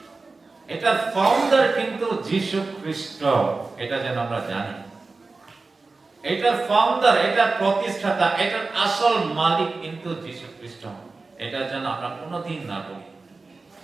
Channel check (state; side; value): quieter; left; 3.8 dB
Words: এটার ফাউন্ডার কিন্তু যীশু খ্রিস্ট, এটা যেন আমরা জানি। এটার ফাউন্ডার, এটার প্রতিষ্ঠাতা, এটার আসল মালিক কিন্তু যীশু খ্রিস্ট, এটা যেন আমরা কোনোদিন না বলি।